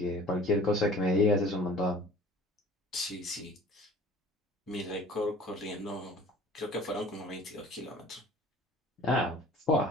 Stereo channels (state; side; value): normal; both; correlation 0.47